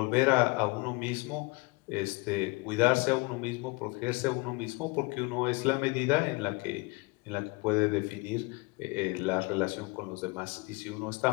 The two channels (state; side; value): quieter; right; 26.5 dB